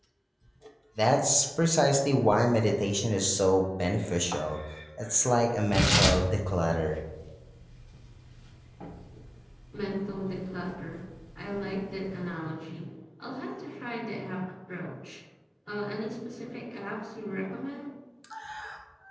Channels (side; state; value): both; identical; correlation 1.00